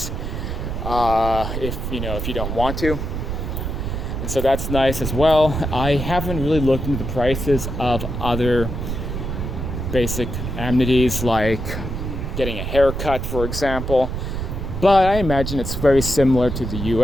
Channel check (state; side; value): noise; right; rumble, 4 dB below the sound